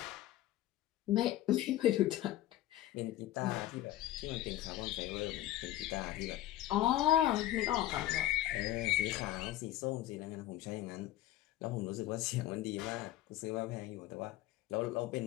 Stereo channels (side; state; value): right; quieter; 14.3 dB